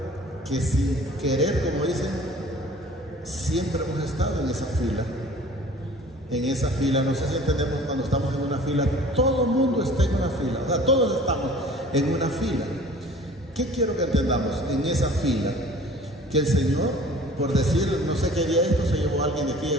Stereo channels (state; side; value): normal; both; correlation 0.47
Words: que sin querer, como dicen, siempre hemos estado en esa fila. En esa fila, no sé si entendemos, cuando estamos en una fila, todo el mundo está en una fila, o sea, todos estamos en una fila. ¿Qué quiero que entendamos? En esa fila, que el Señor, por decir, no sé qué día esto, se llevó a alguien de aquí